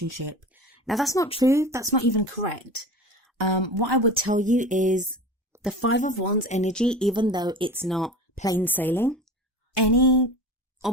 Now, that's not true. That's not even correct. What I would tell you is the 5 of Wands energy, even though it's not plain sailing, any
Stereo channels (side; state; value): both; normal; correlation 0.33